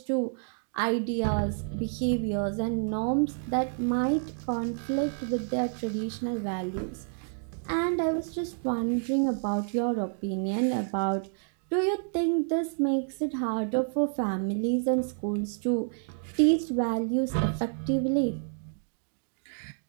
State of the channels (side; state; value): left; silent; digital silence